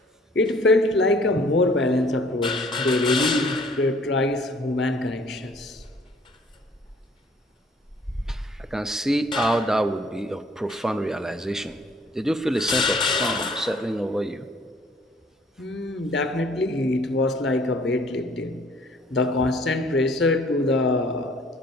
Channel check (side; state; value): both; normal; correlation 0.57